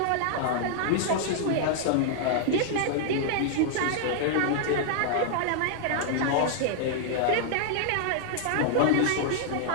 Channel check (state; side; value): different; both; correlation -0.01